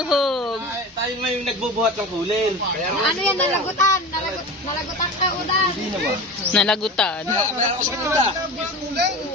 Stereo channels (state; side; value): normal; both; correlation 0.31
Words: Tayo may nagbubuhat ng kulin. Ano yan? Nalagutan. Nalagutan ka, udan. Nalagutan.